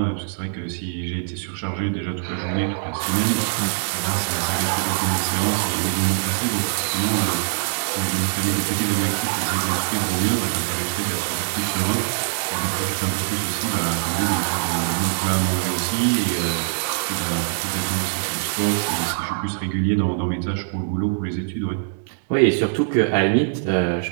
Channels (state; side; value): silent; left; 64 dB below the other